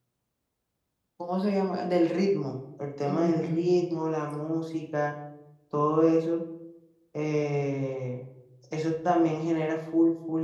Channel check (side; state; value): both; identical; correlation 1.00